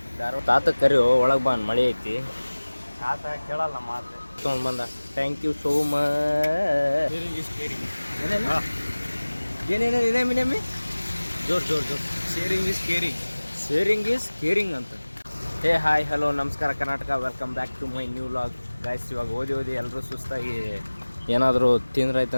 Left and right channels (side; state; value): both; inverted; correlation -1.00